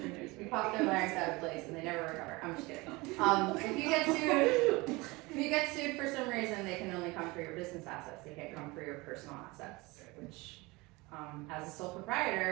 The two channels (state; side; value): quieter; left; 23.5 dB